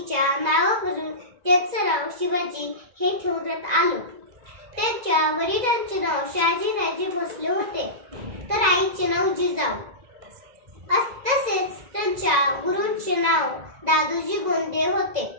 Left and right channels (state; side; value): late; left; 1.9 ms